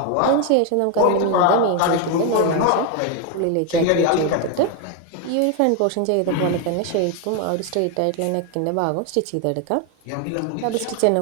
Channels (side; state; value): both; different; correlation 0.01